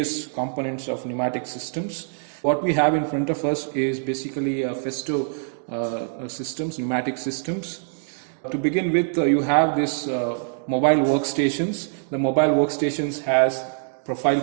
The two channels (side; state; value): left; silent; digital silence